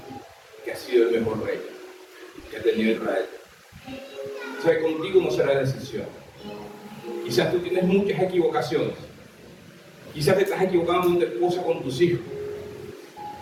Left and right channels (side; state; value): both; identical; correlation 1.00